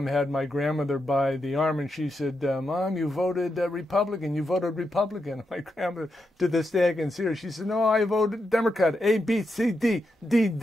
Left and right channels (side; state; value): both; normal; correlation 0.85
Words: had my grandmother by the arm, and she said, "Mom, you voted Republican. You voted Republican." My grandmother, to this day I can see her, she said, "No, I voted Democrat. A, B, C, D,